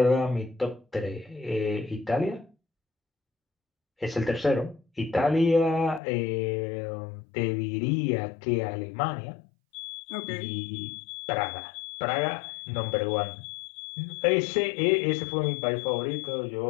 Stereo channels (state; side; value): drops out; right; at 6.0 s